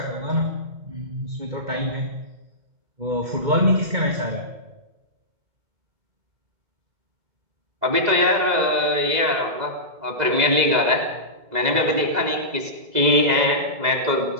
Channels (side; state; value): left; late; 2.0 ms